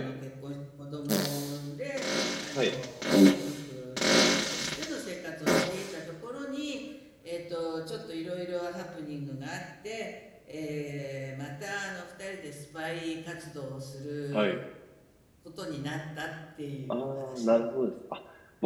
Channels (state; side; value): identical; both; correlation 1.00